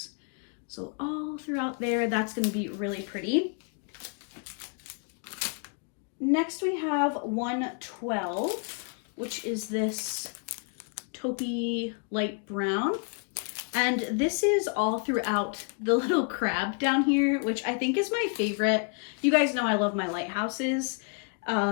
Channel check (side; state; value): right; quieter; 40.0 dB